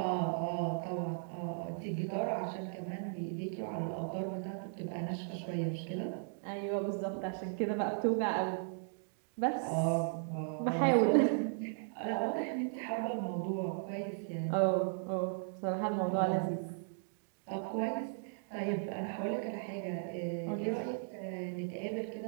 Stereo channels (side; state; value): left; silent; digital silence